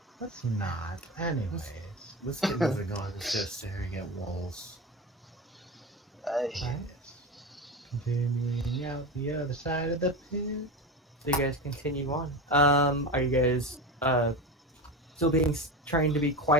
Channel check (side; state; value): both; normal; correlation 0.24